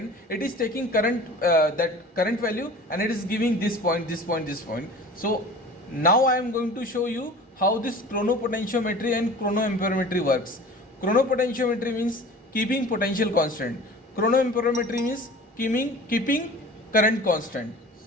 it is taking current, that current value, and it is giving this point, this point, this point. So now I am going to show you how this chronopotentiometry and chronoamperometry works. Chronopotentiometry means keeping potential constant, chronoamperometry means keeping current constant.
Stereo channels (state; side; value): normal; both; correlation 0.41